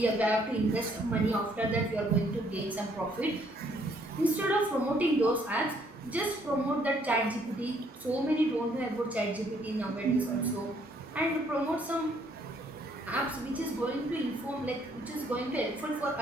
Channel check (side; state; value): both; normal; correlation 0.66